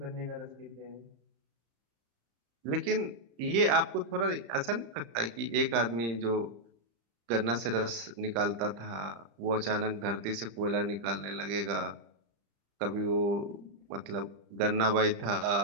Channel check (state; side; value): late; left; 35 ms